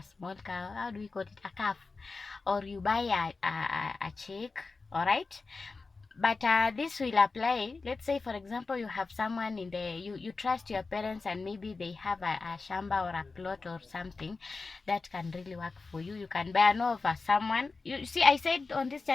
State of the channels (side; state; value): right; quieter; 4.0 dB